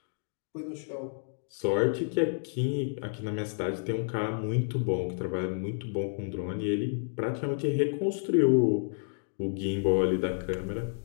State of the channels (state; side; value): silent; right; digital silence